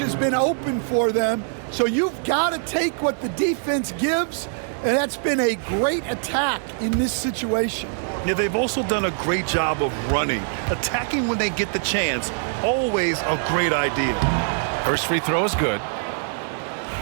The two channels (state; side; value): silent; left; digital silence